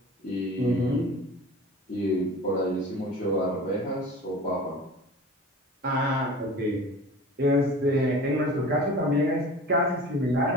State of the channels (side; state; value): both; normal; correlation 0.39